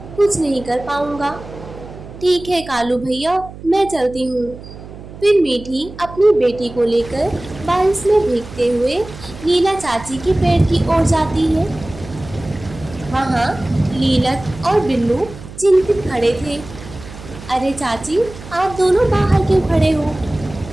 कुछ नहीं कर पाऊंगा। ठीक है कालू भैया, मैं चलती हूँ। फिर मीठी अपनी बेटी को लेकर बारिश में भीगते हुए लीला चाची के पेड़ की ओर जाती है। वहाँ लीलक और बिल्लू चिंतित खड़े थे। अरे चाची, आप दोनों बाहर क्यों खड़े हो?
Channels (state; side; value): noise; right; hum, 15 dB below the sound